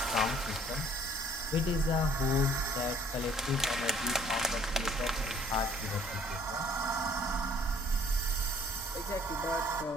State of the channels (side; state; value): both; normal; correlation 0.58